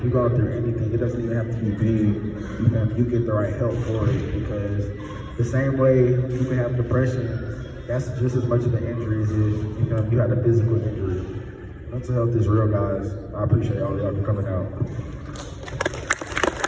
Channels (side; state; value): both; identical; correlation 1.00